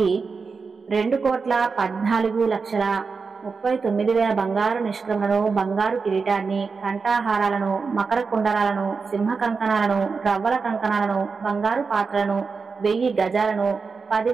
2,14,39,000 బంగారు నిష్క్రమలను, బంగారు కిరీటాన్ని, కంఠాహారాలను, మకర కుండలాలను, సింహ కంకణాలను, రవ్వల కంకణాలను, బంగారు పాత్రలను, 1000 గజాలను,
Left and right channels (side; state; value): left; quieter; 4.9 dB